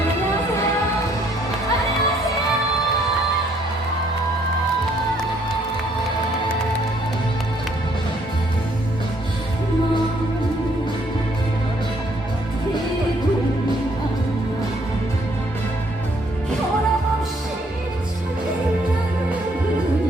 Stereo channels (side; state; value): both; normal; correlation 0.66